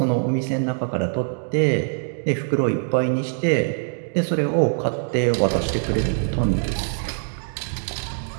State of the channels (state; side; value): silent; left; digital silence